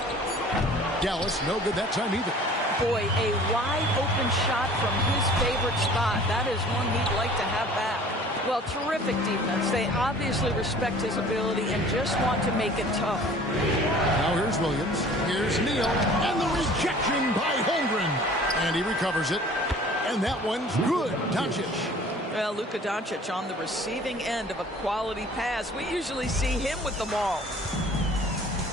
Dallas, no good that time either. Boy, a wide open shot from his favorite spot. That is one he'd like to have back. Well, terrific defense. They obviously respect his ability and just want to make it tough. Now here's Williams. Here's Neal. And the rejection by Holmgren. And he recovers it. And that one's good. Doncic. Well, Luka Doncic on the receiving end of a quality pass. We usually see him with the ball.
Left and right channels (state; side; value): normal; both; correlation 0.49